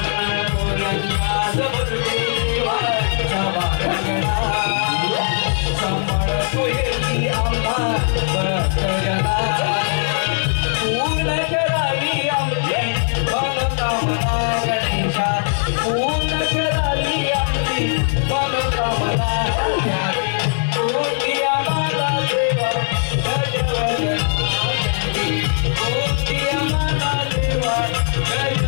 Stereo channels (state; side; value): silent; right; digital silence